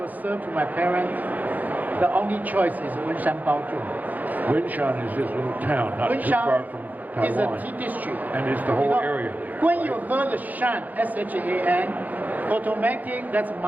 serve to my parents, the only choice is Wenshan Baozhong. Wenshan is this little town, not too far from Taiwan. Is a tea district. And it's the whole area there. When you heard the Shan, S-H-A-N, automatic, that's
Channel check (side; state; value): left; late; 0.081 ms